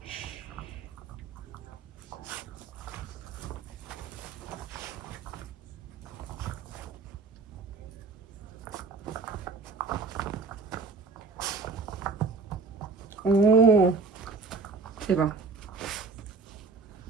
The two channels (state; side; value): quieter; left; 4.3 dB